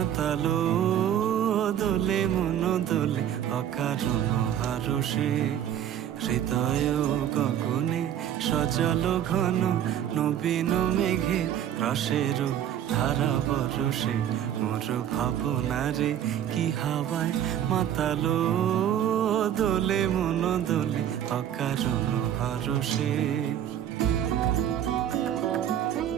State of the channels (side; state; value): left; quieter; 10.3 dB